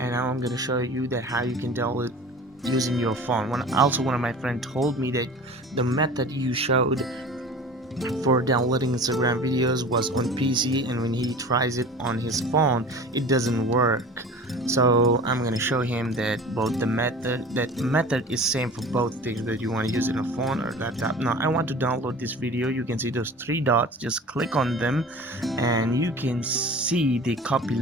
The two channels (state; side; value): normal; both; correlation 0.40